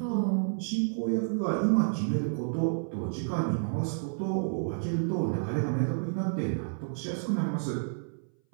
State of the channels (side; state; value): left; silent; 57 dB below the other